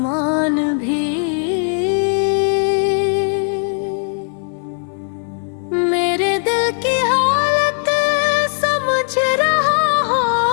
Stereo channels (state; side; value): silent; right; 55 dB below the other